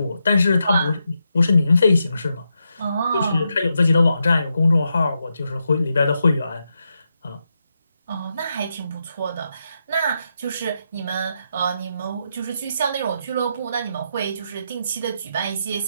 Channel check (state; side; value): inverted; both; correlation -0.84